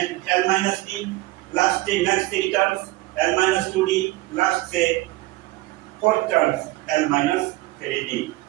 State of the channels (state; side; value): quieter; left; 19.0 dB